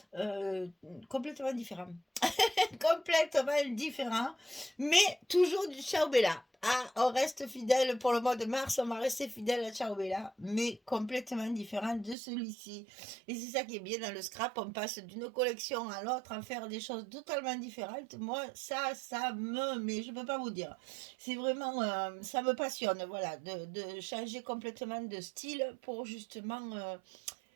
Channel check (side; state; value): left; drops out; at 12.2 s